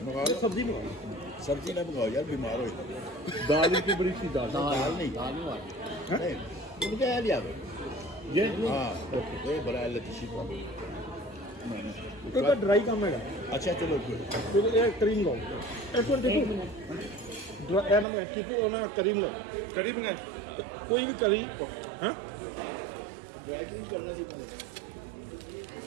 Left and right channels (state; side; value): drops out; left; at 18.1 s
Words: मंगा लो सब्जी मंगा सब्जी ना मंगाओ यार बीमार हो दाल की बड़ी सी दाल नहीं नहीं उनका यार याद ये हाँ ये बड़ा लतीशी का तो ड्राई काम है अच्छा चलो फिर ये क्रीम लो एक बार देखो ड्राई ना मैं किसी को ना क्रीम लो करीब ना कोई भी करी हाँ ड्राई क्लीन करना सीखना